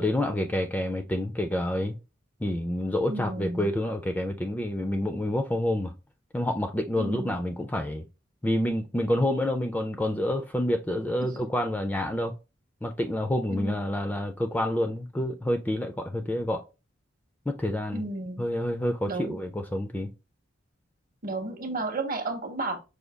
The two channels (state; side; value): normal; both; correlation 0.82